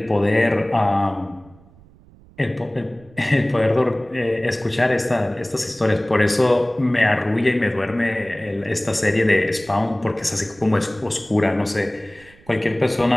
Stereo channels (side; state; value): right; noise; rumble, 26 dB below the sound